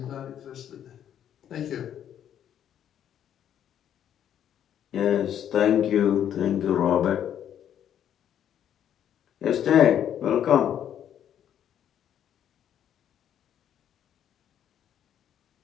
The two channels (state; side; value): quieter; right; 9.9 dB